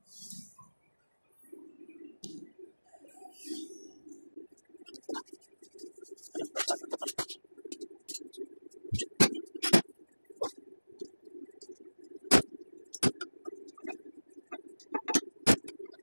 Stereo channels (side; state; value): both; inverted; correlation -1.00